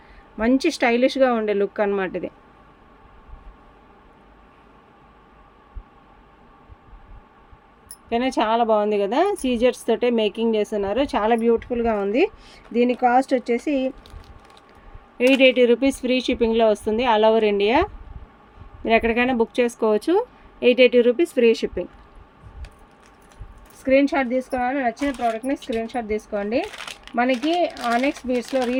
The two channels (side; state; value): both; identical; correlation 1.00